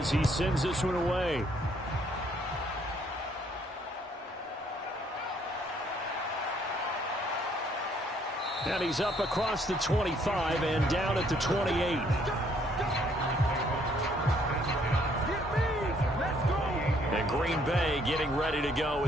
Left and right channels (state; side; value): normal; both; correlation 0.66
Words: he sends this one away. And he's up across the 25 and down at the 28. And Green Bay getting ready to go